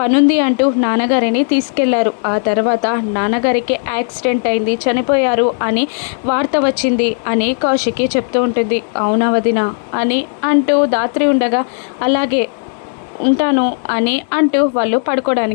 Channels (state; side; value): silent; right; 62 dB below the other